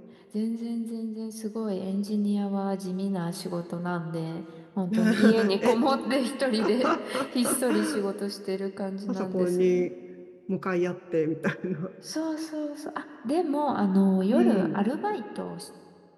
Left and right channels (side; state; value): both; identical; correlation 1.00